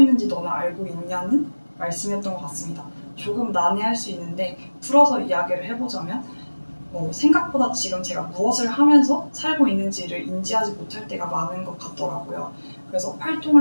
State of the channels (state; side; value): inverted; both; correlation -1.00